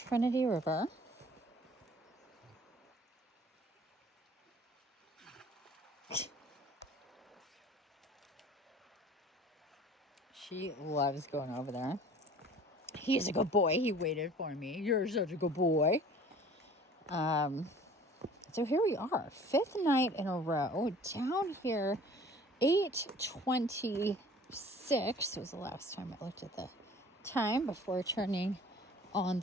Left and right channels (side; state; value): both; normal; correlation 0.48